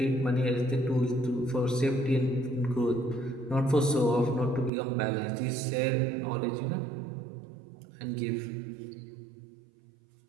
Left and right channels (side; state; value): left; drops out; at 4.7 s